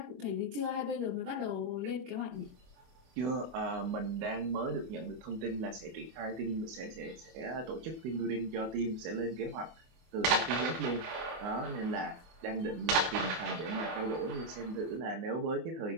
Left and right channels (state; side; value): late; left; 24 ms